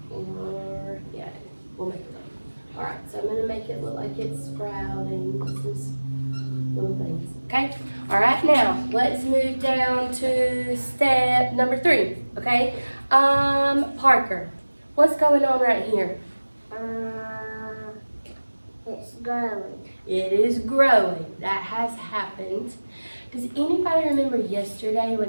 Or yeah, we'll make it look. All right, so I'm gonna make it look like it's sprouting. Little things. Okay? All right, now let's move down to step number 3. Okay? Parker, what's going on right here? It's growing. It is growing. That has happened. Does anybody remember yesterday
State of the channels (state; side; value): inverted; both; correlation -1.00